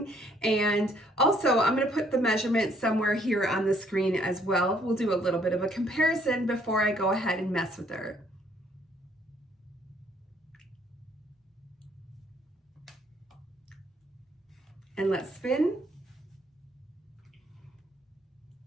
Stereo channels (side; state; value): both; normal; correlation 0.65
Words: And also I'm gonna put the measurement somewhere here on the screen as well. We'll do a little bit of a comparison before I go ahead and mess with her. And let's spin.